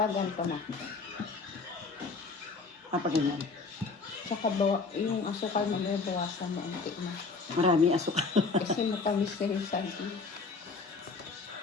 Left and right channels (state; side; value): quieter; right; 4.3 dB